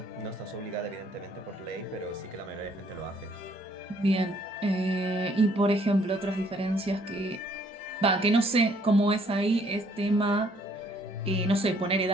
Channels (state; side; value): normal; both; correlation 0.64